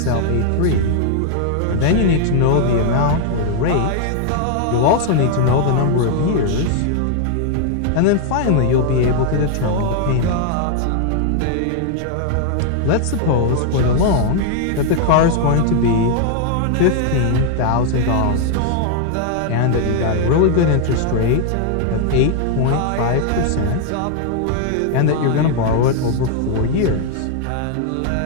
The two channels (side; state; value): both; different; correlation 0.00